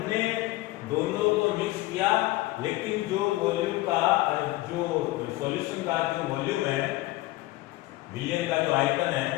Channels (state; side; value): quieter; right; 18.6 dB